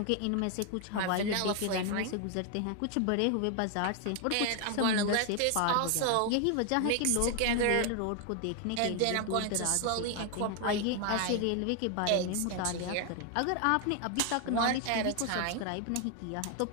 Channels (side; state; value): both; different; correlation 0.01